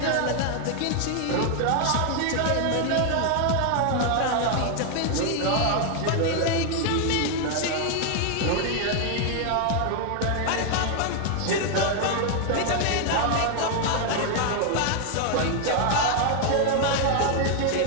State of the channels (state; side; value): different; both; correlation 0.00